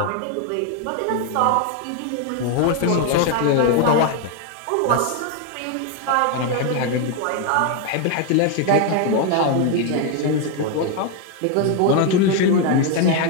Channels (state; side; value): different; both; correlation 0.01